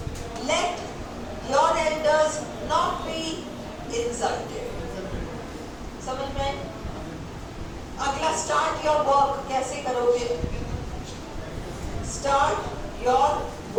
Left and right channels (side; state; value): both; identical; correlation 1.00